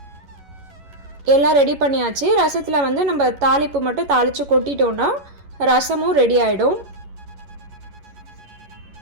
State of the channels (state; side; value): late; left; 11 ms